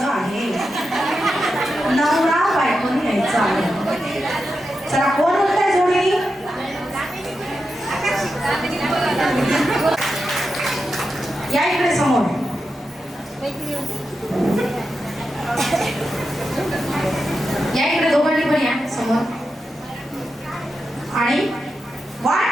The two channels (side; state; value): both; normal; correlation 0.89